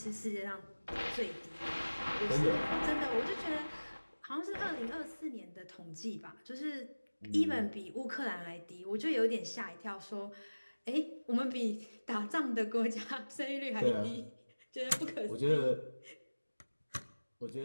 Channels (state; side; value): inverted; both; correlation -1.00